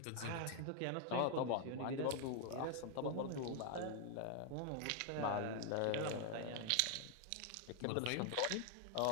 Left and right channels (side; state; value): both; different; correlation 0.00